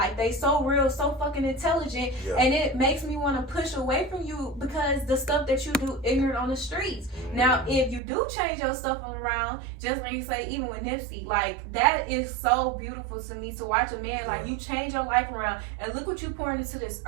they so real, so fucking intelligent. And it makes me want to push away from you because the stuff that you do ignorant on the streets. Now, if you do change your stuff around, just like you say, even with Nipsey, like, that is so beautiful to me to watch a man, like, you change your life around and look what you pouring into this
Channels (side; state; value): left; drops out; at 8.0 s